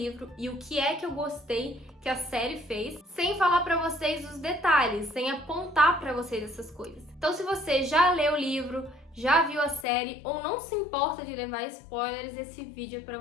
e o que é que eu gostei que a série fez, sem falar pra vocês os detalhes, sem apontar pra vocês essas coisas. Então, se você já leu o livro, já viu a série ou não se importa de levar spoilers, esse vídeo é pra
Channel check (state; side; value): drops out; right; at 9.9 s